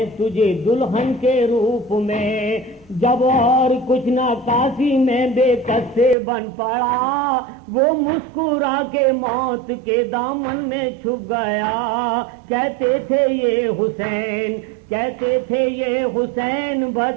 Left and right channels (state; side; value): drops out; left; at 6.2 s